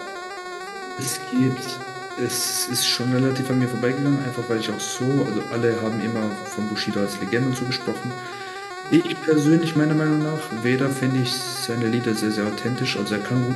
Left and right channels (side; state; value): both; identical; correlation 1.00